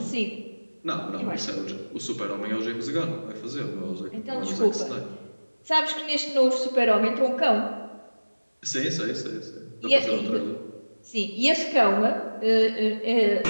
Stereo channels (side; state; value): both; inverted; correlation -1.00